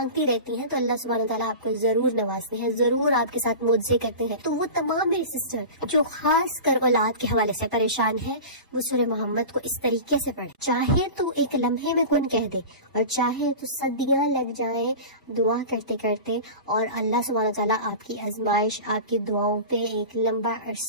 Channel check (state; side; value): inverted; both; correlation -0.32